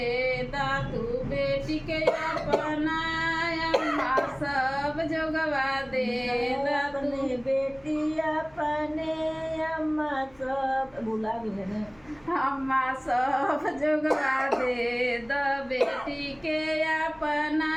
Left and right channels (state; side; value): noise; left; hum, 28 dB below the sound